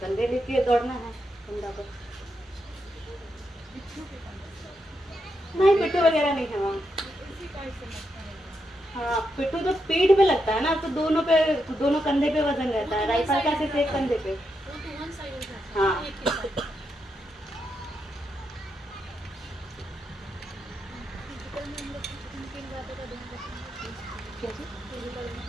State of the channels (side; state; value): both; normal; correlation 0.83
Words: कंधे लेके दौड़ना है कंधा पर। नहीं, पिट्ठू वगैरह नहीं है वहाँ। हाँ, पिट्ठू तो पीठ पे लगता है ना, तो दोनों कंधे पे वजन रहता है। राइफल का सिर्फ एक कंधे पे। हाँ,